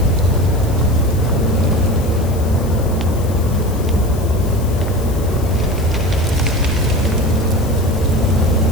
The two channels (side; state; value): left; noise; hiss, 18 dB below the sound